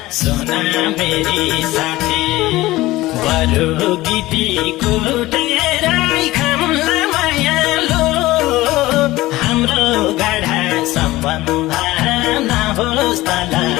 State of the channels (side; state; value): right; quieter; 18.1 dB